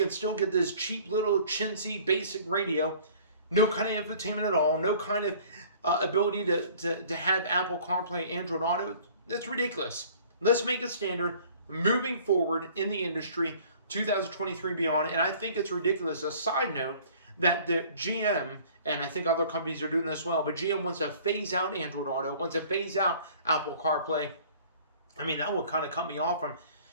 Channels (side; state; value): both; inverted; correlation -0.51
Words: still get this cheap little chintzy basic radio, no kind of infotainment at all, no kind of ability to have Apple CarPlay, Android Auto. That's ridiculous. Let's make it standard moving forward in the industry, 2023 beyond. And I think it's ridiculous. A side note, that the GM, and I think other companies are doing this well, but GM wants to phase out Android Auto, wants to phase out Apple CarPlay. I mean, that would kind of cut me off from